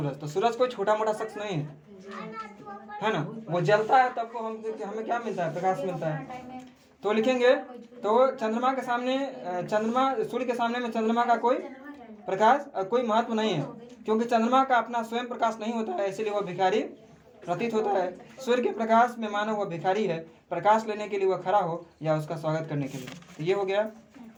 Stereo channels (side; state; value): both; identical; correlation 1.00